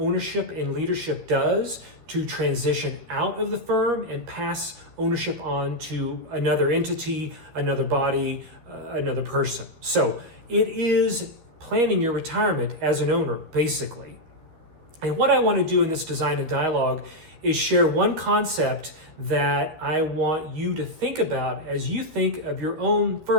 and leadership does to transition out of the firm and pass ownership on to another entity, another body, another person. So it is planning your retirement as an owner, basically. And what I want to do in this Design and Dialogue is share one concept that I want you to think about as you think of your own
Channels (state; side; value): late; left; 13 ms